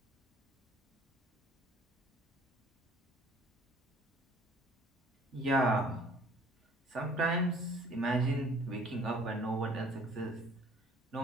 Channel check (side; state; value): both; normal; correlation 0.54